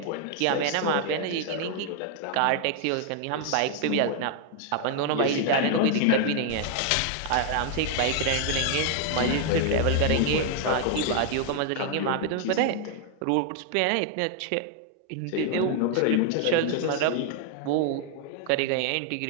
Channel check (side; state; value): both; different; correlation 0.00